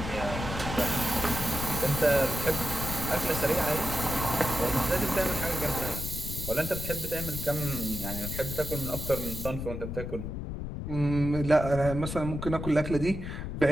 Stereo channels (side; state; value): left; noise; rumble, 6 dB below the sound